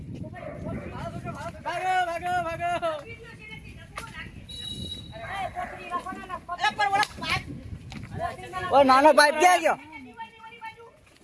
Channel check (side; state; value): both; identical; correlation 1.00